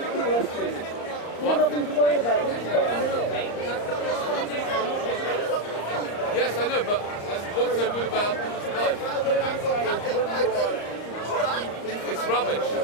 What? Nothing to worry about. Yes, I know, but what's so good about life? It's rubbish.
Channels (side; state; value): right; late; 34 ms